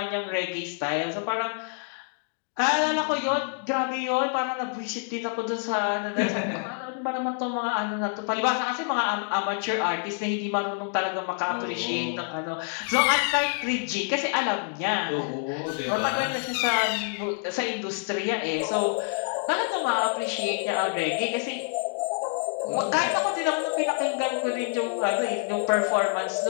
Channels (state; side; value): silent; right; 56 dB below the other